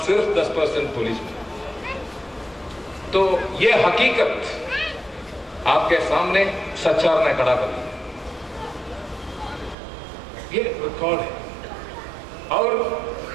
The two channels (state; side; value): drops out; left; at 9.8 s